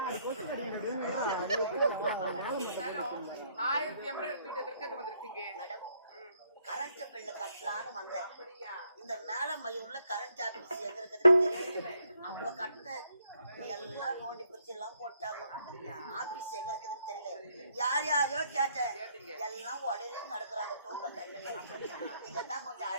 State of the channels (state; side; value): inverted; both; correlation -0.70